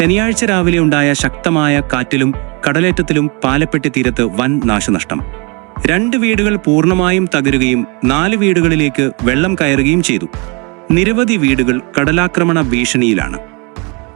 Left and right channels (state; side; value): quieter; left; 30.6 dB